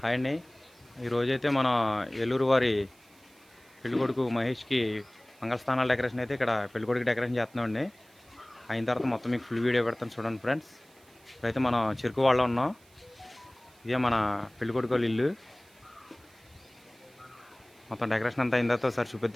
Hi అండి. ఈరోజైతే మన ఏలూరు వారి పెళ్ళికొడుకు మహేష్కి మంగళస్థానాల డెకరేషన్ అయితే ఇక్కడ పెళ్ళికొడుకు డెకరేషన్ చేస్తున్నామండి. అయిన తర్వాత మొత్తం మీకు ఫుల్ వీడియో పెడతాను చూడండి ఫ్రెండ్స్. ఇప్పుడైతే మనం చెరుకు వాళ్ళ ఉన్నాం. ఇదే మన పెళ్ళికొడుకు వాళ్ళ ఇల్లు. మొత్తం డెకరేషన్ అంతా అయిన తర్వాత ఒకసారి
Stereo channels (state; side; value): noise; right; hiss, 29 dB below the sound